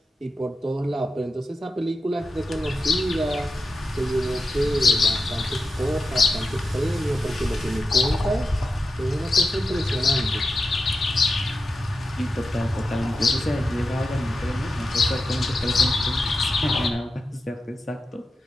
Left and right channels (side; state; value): both; normal; correlation 0.90